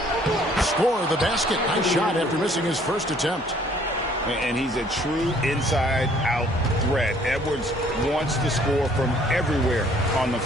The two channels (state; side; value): normal; both; correlation 0.60